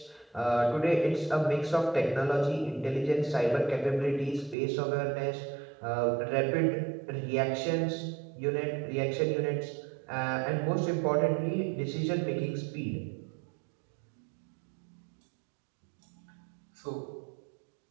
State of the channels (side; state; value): left; drops out; at 4.5 s